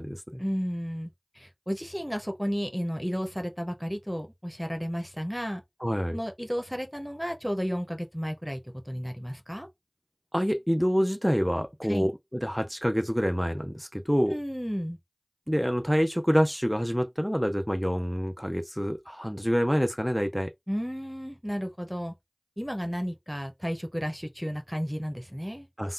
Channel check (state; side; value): identical; both; correlation 1.00